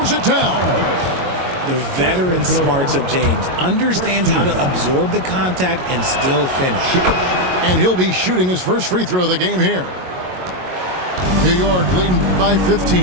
it down. The veteran smarts of James understands how to absorb the contact and still finish. And he'll be shooting his first free throw of the game here. New York leading by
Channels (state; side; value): late; left; 22 ms